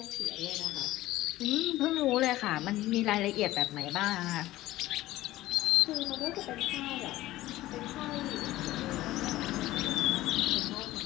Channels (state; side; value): quieter; right; 16.2 dB